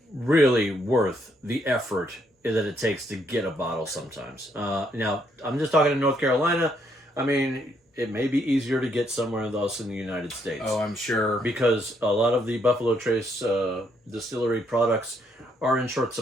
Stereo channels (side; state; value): both; normal; correlation 0.73